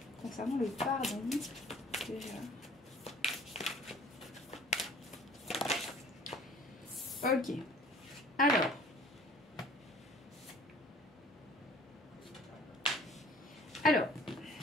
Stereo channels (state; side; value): normal; both; correlation 0.51